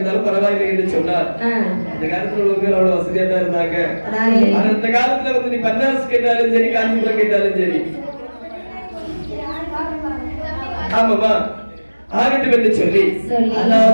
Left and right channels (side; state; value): both; inverted; correlation -1.00